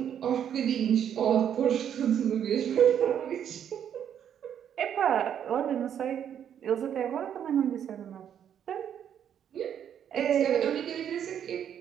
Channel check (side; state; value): left; quieter; 9.2 dB